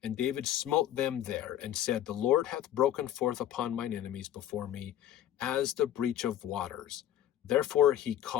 and David smote them there, and said, the Lord hath broken forth upon mine enemies before me, as the breach of waters. Therefore he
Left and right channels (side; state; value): right; quieter; 11.7 dB